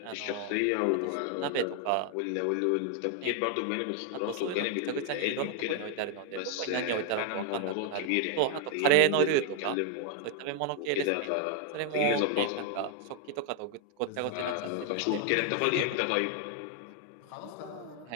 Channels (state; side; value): different; both; correlation 0.00